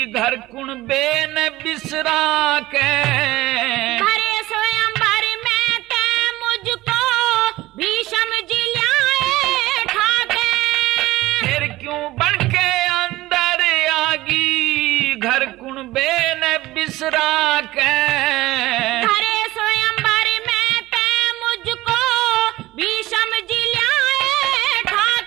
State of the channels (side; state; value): left; quieter; 17.7 dB